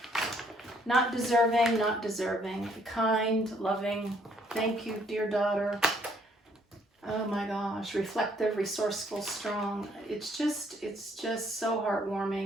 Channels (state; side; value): normal; both; correlation 0.66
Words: Not deserving, not deserving. Kind, loving. Thank you, dear daughter. Oh my gosh. Reflective, resourceful, strong. It's just so